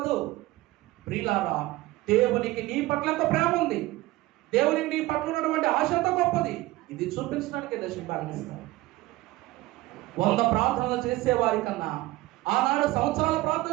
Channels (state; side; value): quieter; left; 18.5 dB